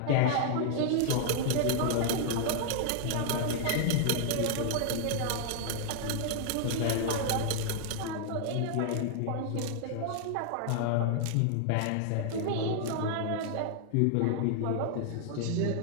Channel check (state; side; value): different; both; correlation -0.01